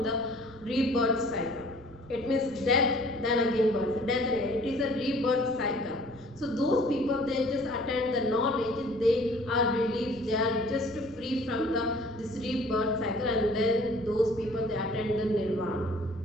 the rebirth cycle. It means death, then again birth, death again. It is a rebirth cycle. So those people, they just attend the knowledge, they are relieved, they are just free from the this rebirth cycle, and then those people they attend the nirvana.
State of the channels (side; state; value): left; noise; rumble, 23 dB below the sound